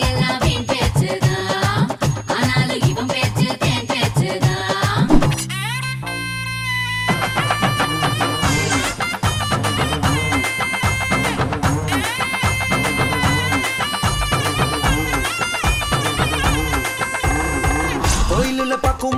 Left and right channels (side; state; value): both; identical; correlation 1.00